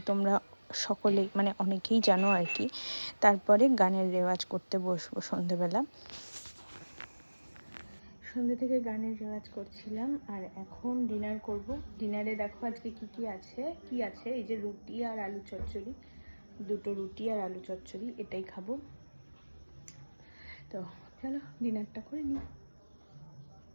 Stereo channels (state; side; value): inverted; both; correlation -1.00